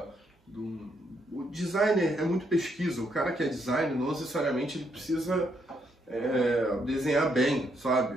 o designer é muito pesquisa. O cara que é designer não necessariamente ele precisa desenhar bem,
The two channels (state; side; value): normal; both; correlation 0.75